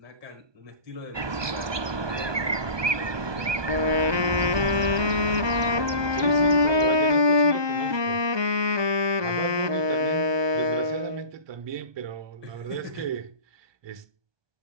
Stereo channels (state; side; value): late; left; 1.2 ms